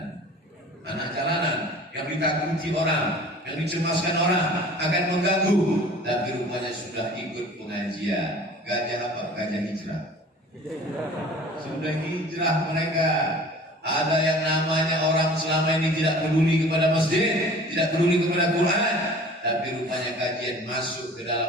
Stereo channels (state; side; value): normal; both; correlation 0.45